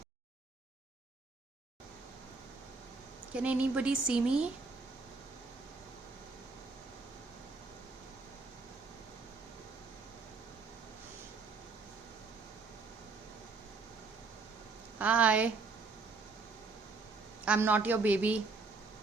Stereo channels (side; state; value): left; quieter; 4.1 dB